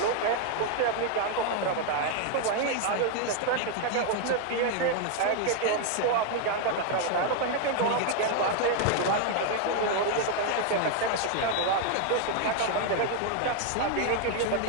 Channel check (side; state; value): both; different; correlation 0.01